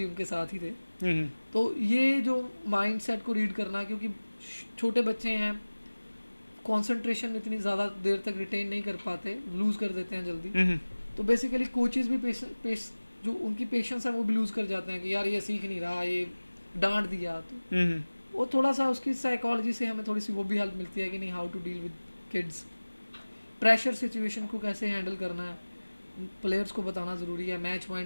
उनके साथ ही थे। तो ये जो माइंड सेट को रीड करना, क्योंकि छोटे बच्चे हैं, कंसंट्रेशन इतनी ज़्यादा देर तक रिटेन नहीं कर पाते, लूज़ कर देते हैं जल्दी। तो बेसिकली कोचेस भी जो उनकी पेशेंस है वो भी लूज़ कर जाते हैं कि यार ये सीख नहीं रहा, ये डांट दिया। तो वो थोड़ा सा उसकी साइकोलॉजी से हमें थोड़ी सी वो भी हेल्प मिलती है कि नहीं, how to deal with kids, pressure situation को कैसे हैंडल करना है, प्लेयर्स को बताना ज़रूरी है, मैच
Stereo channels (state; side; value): inverted; both; correlation -1.00